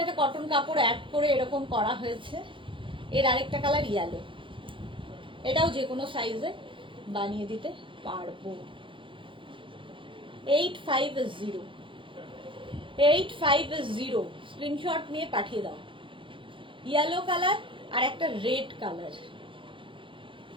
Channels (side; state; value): left; late; 0.25 ms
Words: একটা কটন কাপড় অ্যাড করে এরকম করা হয়েছে। এর আরেকটা কালার ইয়েলো, এটাও যে কোনো সাইজে বানিয়ে দিতে পারবো। 850, 850, স্ক্রিনশট নিয়ে পাঠিয়ে দাও। ইয়েলো কালার আর একটা রেড কালার,